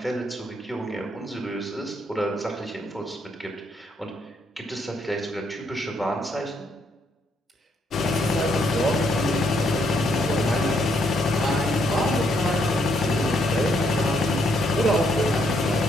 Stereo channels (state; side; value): normal; both; correlation 0.73